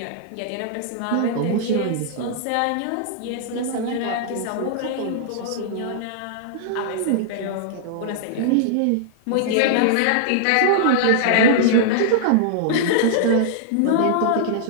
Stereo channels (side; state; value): both; different; correlation -0.01